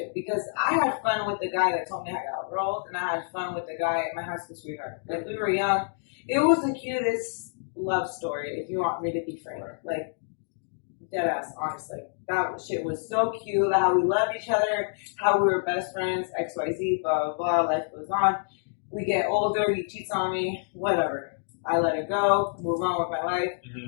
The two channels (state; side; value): silent; right; digital silence